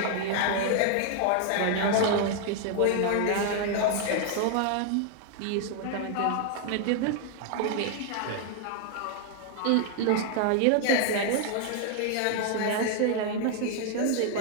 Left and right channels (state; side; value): different; both; correlation 0.00